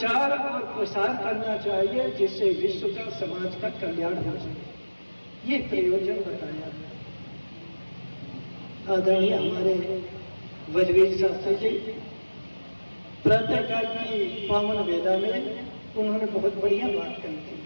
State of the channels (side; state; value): both; inverted; correlation -1.00